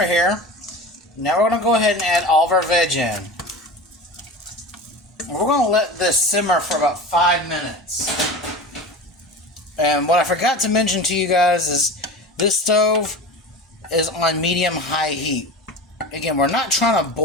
here. Now we're going to go ahead and add all of our veg in. We're going to let this simmer for about 5 minutes. And what I forgot to mention to you guys is this stove is on medium-high heat. Again, we're not trying to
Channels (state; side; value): normal; both; correlation 0.31